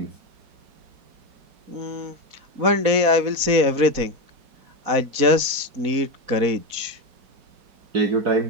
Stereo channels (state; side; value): late; left; 4.1 ms